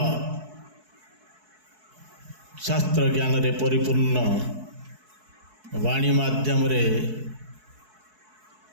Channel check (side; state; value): left; late; 4.6 ms